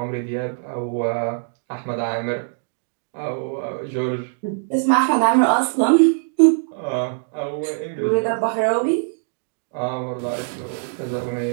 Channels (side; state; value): left; silent; digital silence